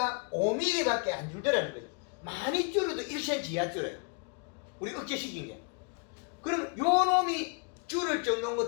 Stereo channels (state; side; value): quieter; right; 36.1 dB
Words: 5mm밖에 안 줄더라는 거예요. 많이 줄여도 1cm 이하 줄여요. 우리 억제시킨 게. 그럼 요 놈이 줄을 정도인